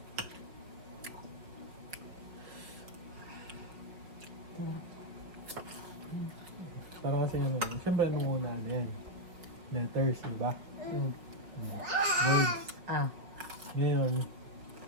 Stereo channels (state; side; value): late; left; 5.2 ms